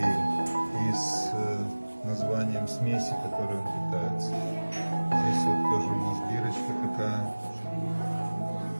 и с названием смеси, которой он питается. Здесь вот тоже у нас бирочка такая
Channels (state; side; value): inverted; both; correlation -1.00